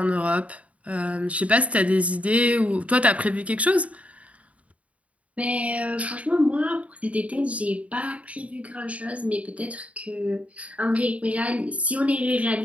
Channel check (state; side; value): late; left; 0.066 ms